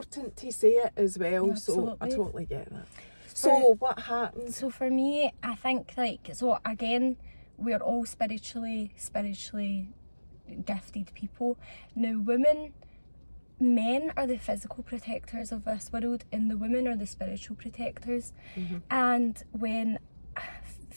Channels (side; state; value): both; inverted; correlation -1.00